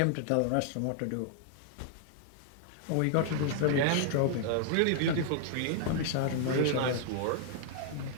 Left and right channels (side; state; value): both; different; correlation -0.01